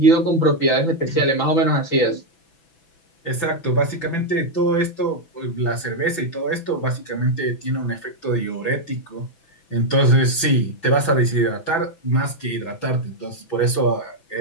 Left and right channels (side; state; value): right; late; 6.0 ms